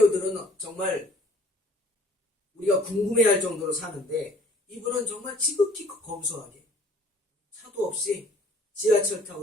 정말 우리가 궁금해할 정도로 사는데 이분은 정말 지극히 검소하게 차도 없이 지하철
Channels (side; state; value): both; normal; correlation 0.56